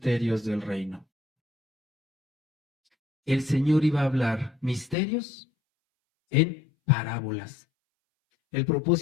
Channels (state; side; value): drops out; right; at 5.0 s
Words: del reino. El Señor iba a hablar misterios en parábolas. El